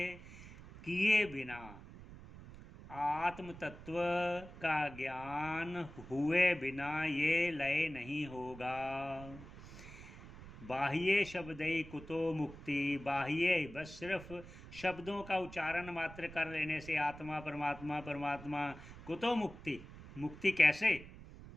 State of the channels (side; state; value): right; noise; rumble, 16 dB below the sound